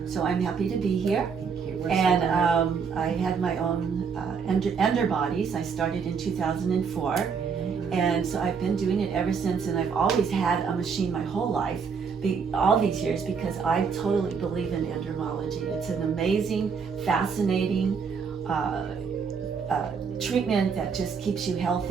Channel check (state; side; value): quieter; left; 6.0 dB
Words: So I'm happy to be here. And I had my own ender bodies. I started in 2004. And so I've been doing it ever since, and I've always had a machine my whole life, all these years, because I totally believe in endermology. It's an amazing, fascinating treatment that just keeps you